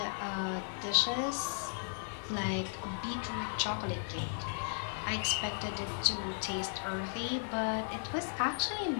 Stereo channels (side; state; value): right; silent; 54 dB below the other